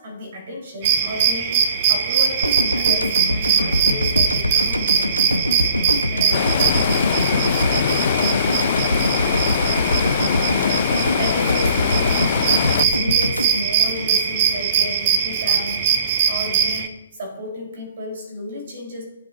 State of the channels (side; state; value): both; inverted; correlation -0.51